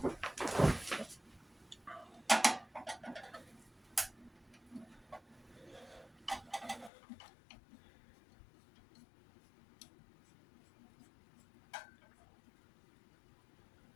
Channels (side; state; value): right; drops out; at 6.9 s